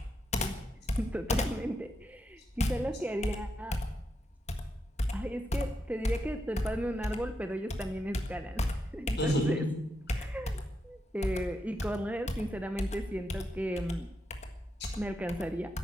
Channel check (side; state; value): both; normal; correlation 0.84